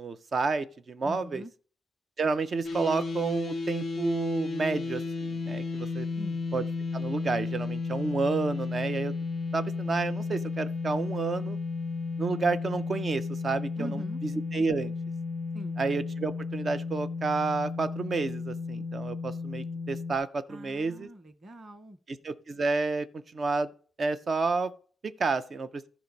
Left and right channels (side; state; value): both; normal; correlation 0.83